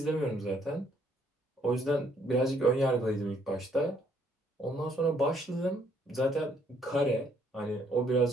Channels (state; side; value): normal; both; correlation 0.68